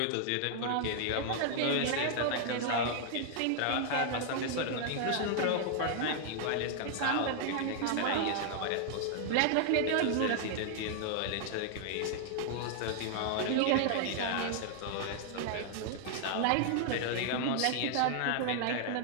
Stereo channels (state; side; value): different; both; correlation 0.00